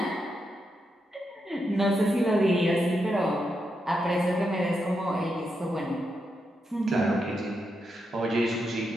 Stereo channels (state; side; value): normal; both; correlation 0.84